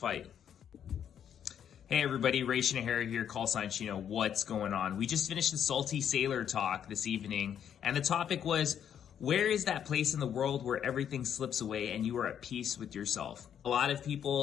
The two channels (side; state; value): right; quieter; 9.0 dB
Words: Hey everybody, Ration Air here, call sign Chino. What's going on? We just finished the Saltyu Sailor Talk this evening, and the topic was, where is that place in the world where everything slips away and you are at peace with yourself? A lot of